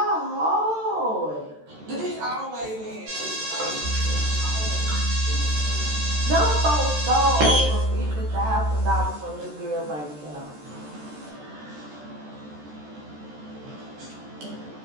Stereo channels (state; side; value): late; left; 13 ms